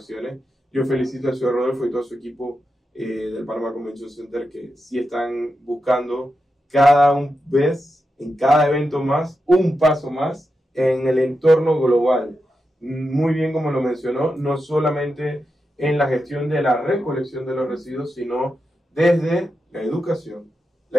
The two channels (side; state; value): both; normal; correlation 0.88